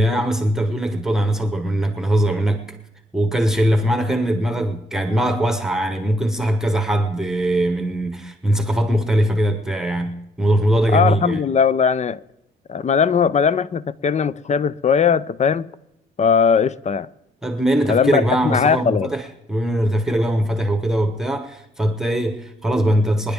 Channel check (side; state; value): both; normal; correlation 0.64